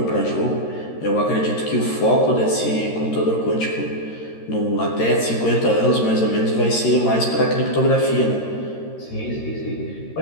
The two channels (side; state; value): right; late; 13 ms